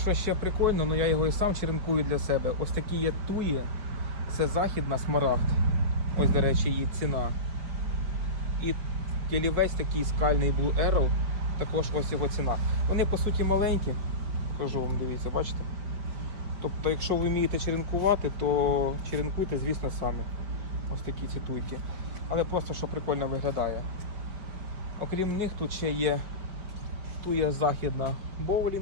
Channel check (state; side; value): late; left; 5.0 ms